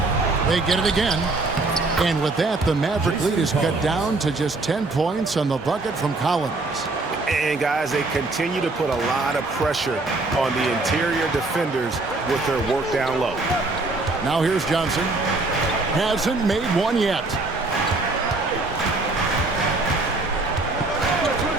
They get it again. And with that, the Maverick lead is cut down to just 10 points on the bucket from Collins. And, guys, they continue to put a lot of pressure on the interior defenders with their work down low. Now here's Johnson. Hasn't made one yet.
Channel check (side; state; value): left; quieter; 3.2 dB